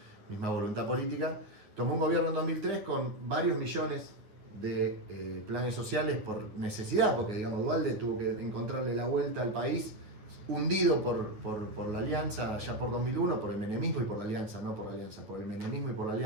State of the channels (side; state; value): left; late; 9.6 ms